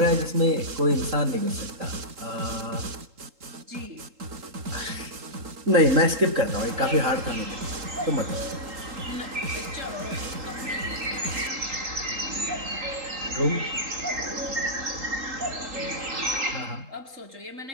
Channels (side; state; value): left; late; 3.8 ms